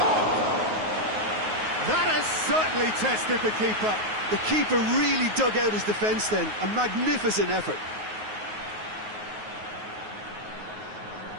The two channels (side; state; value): left; late; 9.4 ms